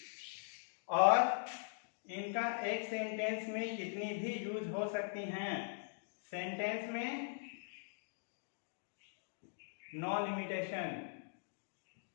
और इनका एक सेंटेंस में कितनी भी यूज हो सकती हैं। सेंटेंस में नो लिमिटेशन।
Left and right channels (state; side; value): silent; right; digital silence